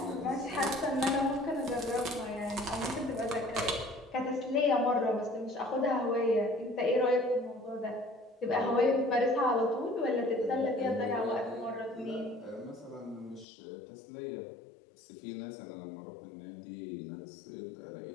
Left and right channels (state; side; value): drops out; right; at 13.5 s